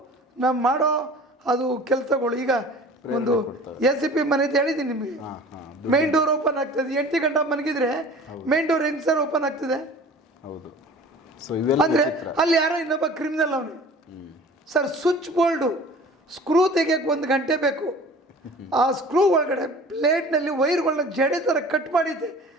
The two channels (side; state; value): both; normal; correlation 0.44